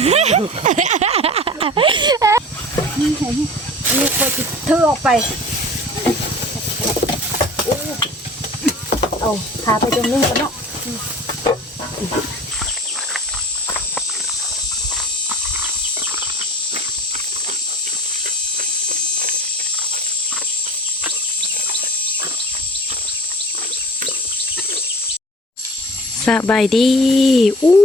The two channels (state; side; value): normal; both; correlation 0.42